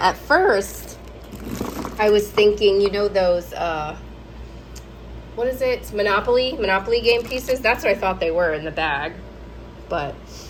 At first, I was thinking, you know, those, what is it? Monopoly game pieces? That's what I thought they were in the bag. But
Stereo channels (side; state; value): both; identical; correlation 1.00